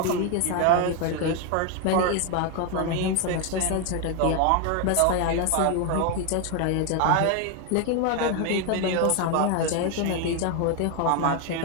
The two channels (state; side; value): different; both; correlation 0.01